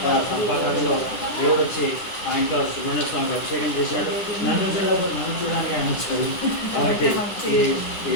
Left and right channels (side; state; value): right; late; 10 ms